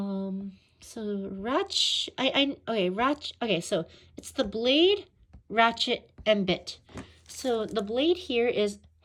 So okay, so it's the blade, ratchet, and bit. So the blade here is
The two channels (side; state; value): both; identical; correlation 1.00